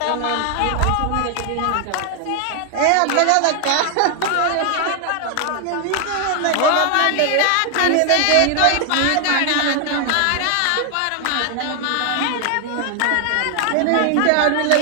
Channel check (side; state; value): both; different; correlation 0.00